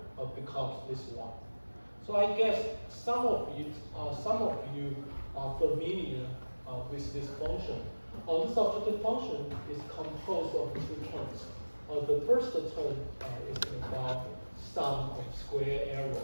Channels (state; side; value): inverted; both; correlation -1.00